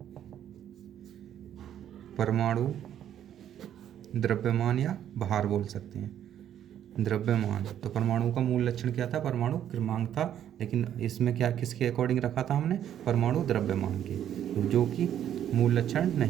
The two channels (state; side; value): quieter; left; 10.4 dB